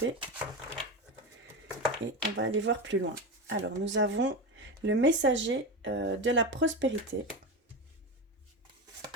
et on va aller voir plus loin. Alors, nous avons le messager de la prospérité,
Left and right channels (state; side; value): normal; both; correlation 0.20